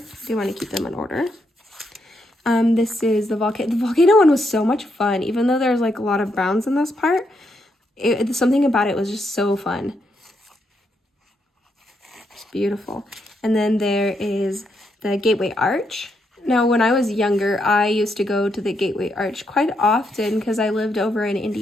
do want to keep them in order. This is the volcano. The volcano one was so much fun, even though there's like a lot of browns in this part. Something about it was just so fun. It's beautiful. And then there is the Gateway Arch. Now, when I was younger, I used to go to the Gateway Arch quite often because I lived over in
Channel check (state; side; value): normal; both; correlation 0.79